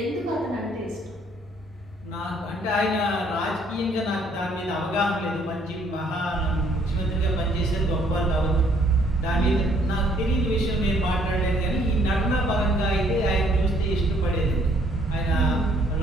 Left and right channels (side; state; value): both; normal; correlation 0.64